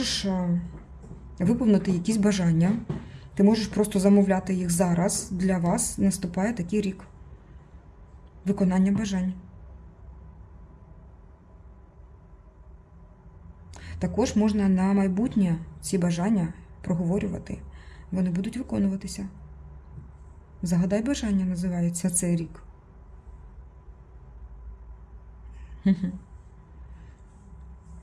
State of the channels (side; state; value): both; identical; correlation 1.00